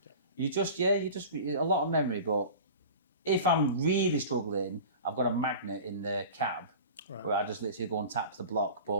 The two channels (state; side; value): inverted; both; correlation -0.37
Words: You just a lot of memory. But if I'm really struggling, I've got a magnet in the cab where I just literally go and tap the block.